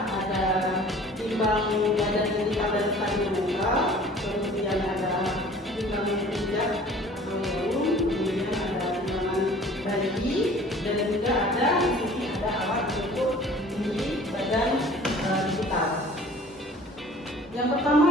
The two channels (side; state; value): both; normal; correlation 0.48